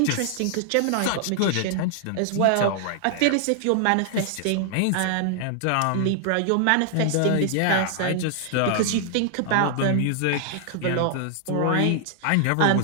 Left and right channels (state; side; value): different; both; correlation 0.00